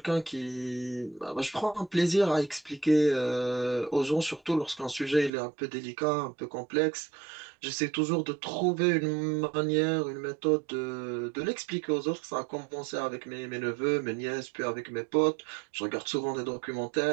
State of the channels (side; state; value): left; drops out; at 5.3 s